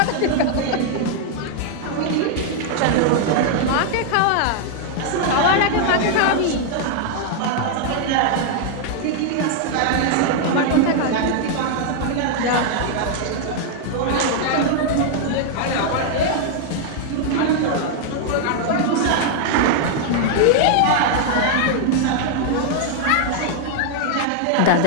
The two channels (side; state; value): both; different; correlation 0.00